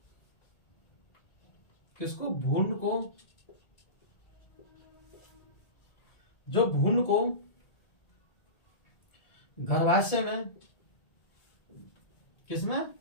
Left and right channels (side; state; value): right; late; 1.8 ms